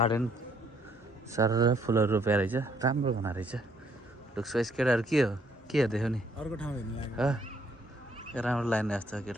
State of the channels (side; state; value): both; normal; correlation 0.67